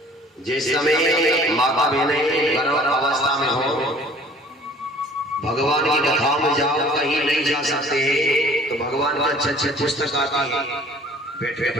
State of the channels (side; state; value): both; normal; correlation 0.51